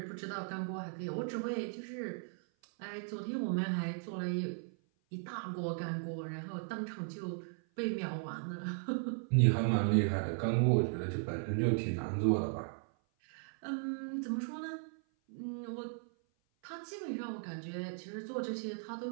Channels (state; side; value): silent; left; 53 dB below the other